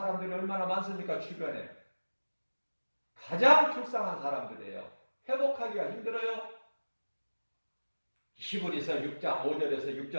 얼마나 많습니까? 주변에. 가장 불쌍한 사람들이에요. 회복하기가 힘들어요. 히브리서 6장 5절에서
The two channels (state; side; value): inverted; both; correlation -1.00